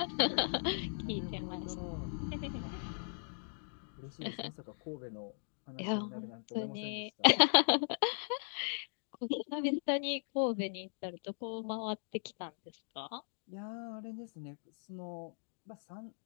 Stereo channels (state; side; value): silent; right; digital silence